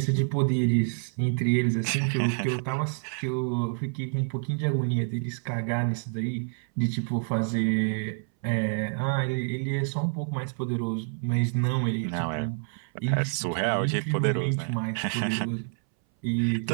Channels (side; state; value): left; silent; 60 dB below the other